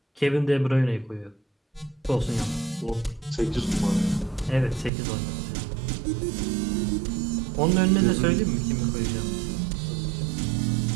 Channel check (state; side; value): drops out; left; at 4.9 s